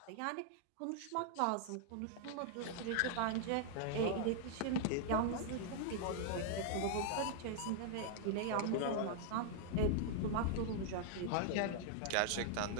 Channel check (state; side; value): different; both; correlation -0.01